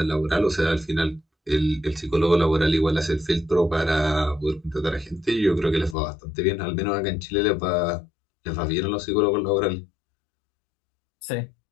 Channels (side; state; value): right; drops out; at 6.0 s